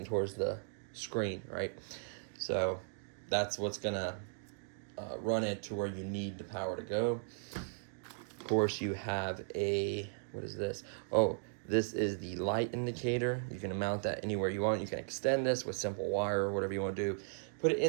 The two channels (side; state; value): left; silent; digital silence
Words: towards the screen, right? So that's what's gonna run it to where you need the power to go. Of course, you have a, what is this? Oh, this is the light indicator. You can mount that anywhere you want. You can extend this with simple wire or whatever you want to do. Put it